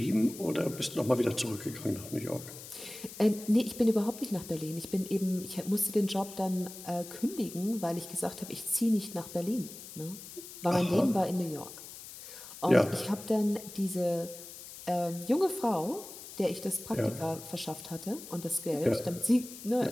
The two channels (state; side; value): noise; left; hiss, 14 dB below the sound